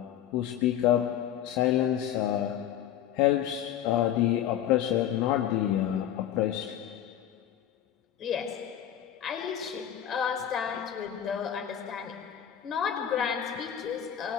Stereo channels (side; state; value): right; quieter; 10.4 dB